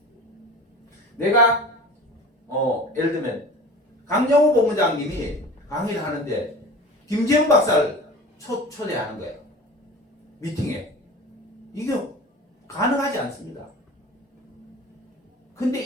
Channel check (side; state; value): both; normal; correlation 0.38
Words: 내가 예를 들면 강정호 본부장님이 강의를 하는데 김재훈 박사를 초대하는 거예요. 미팅에. 이게 가능하지 않습니다. 근데